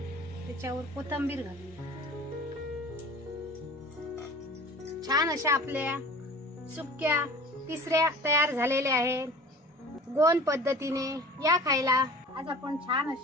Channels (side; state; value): both; normal; correlation 0.42